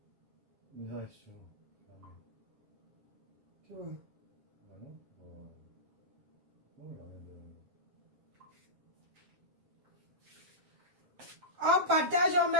une réaction. Tu vois. Ah non, On partage, on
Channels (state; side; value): late; left; 7.5 ms